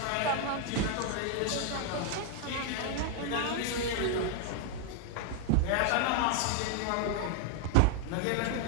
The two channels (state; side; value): different; both; correlation 0.00